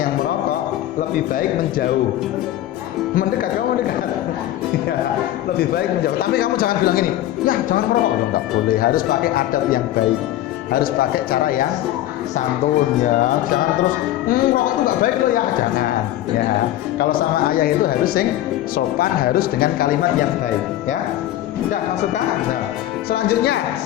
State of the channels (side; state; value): right; quieter; 13.7 dB